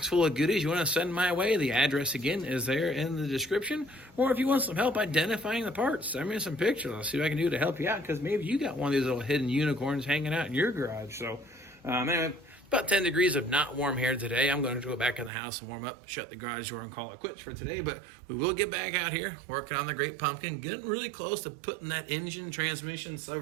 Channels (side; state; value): left; drops out; at 15.3 s